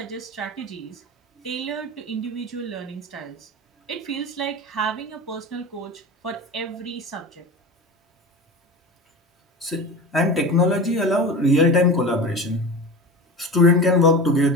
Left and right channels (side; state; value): both; normal; correlation 0.30